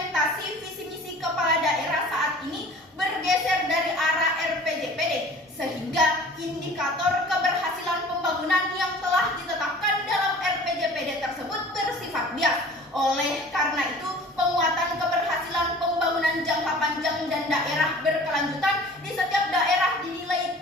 visi misi kepala daerah saat ini bergeser dari arah RPJPD, sehingga indikator keberhasilan pembangunan yang telah ditetapkan dalam RPJPD tersebut bersifat bias. Oleh karena itu, penguatan keberhasilan pembangunan jangka panjang dan daerah berkelanjutan di setiap daerah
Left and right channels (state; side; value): normal; both; correlation 0.45